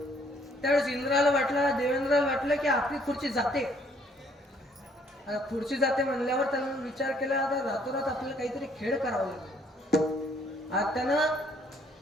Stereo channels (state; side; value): normal; both; correlation 0.65